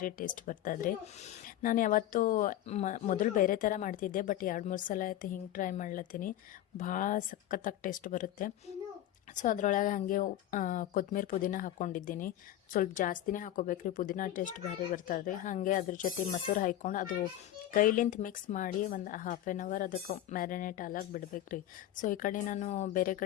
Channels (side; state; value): right; quieter; 12.8 dB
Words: ಟೇಸ್ಟ್ ಬರ್ತದ್ರಿ. ನಾನು ಯಾವತ್ತೂ ಮೊದಲು ಬೇರೆ ಥರ ಮಾಡ್ತಿದ್ದೆ, ಬಟ್ 2-3 ಸಲ ಆಯ್ತು ಹಿಂಗೆ ಟ್ರೈ ಮಾಡ್ಲತ್ತೀನಿ. ಭಾಳ ಸಖತ್ತಾಗಿ ಟೇಸ್ಟ್ ಬರುತ್ತೆ. ಸೊ ಅದರೊಳಗೆ ಹಾಗೆ ಕೊತ್ತಂಬರಿ ಪುದೀನ ಹಾಕ್ಕೊಂಡಿದ್ದೀನಿ. ಸ್ವಲ್ಪ ಜಾಸ್ತಿನೇ ಹಾಕೋಬೇಕ್ರಿ, ಪುದೀನ ಟೇಸ್ಟ್ ಭಾರಿ ಬರ್ತದೆ. ಹಾಗೆ ಅದ್ರ ಜೊತೆ ಮೊಸರು ಹಾಕ್ಕೊಂಡು ಅದು ಕೈಲಿಂತ ಮಿಕ್ಸ್ ಮಾಡಿ ಒಂದು 1/2 ಅವರ್ ಅದಕ್ಕೆ ಮ್ಯಾರಿನೇಟ್ ಆಲಾಗಿ ಬಿಡ್ಬೇಕ್ರಿ. ಸೊ ಈ ಕಡೆ ನಾನು ಬೇರೆ